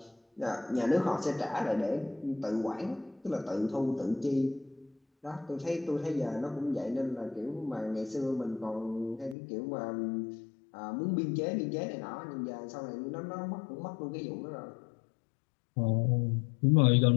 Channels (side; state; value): right; drops out; at 9.3 s